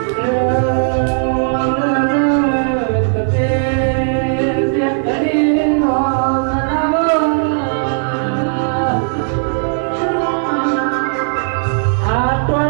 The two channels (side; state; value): left; silent; 57 dB below the other